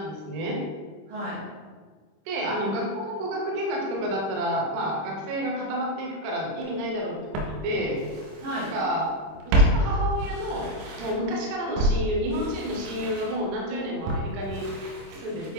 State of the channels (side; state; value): left; late; 25 ms